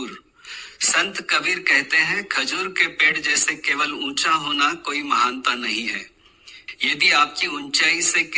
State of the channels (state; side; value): identical; both; correlation 1.00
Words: संत कबीर कहते हैं खजूर के पेड़ जैसे केवल ऊंचा होना कोई महानता नहीं है। यदि आपकी ऊंचाई से